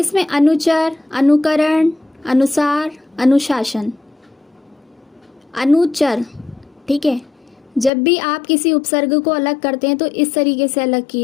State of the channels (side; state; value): right; drops out; at 7.9 s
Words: अनुचर, अनुकरण, अनुसार, अनुशासन। अनुचर। ठीक है, जब भी आप किसी उपसर्ग को अलग करते हैं तो इस तरीके से अलग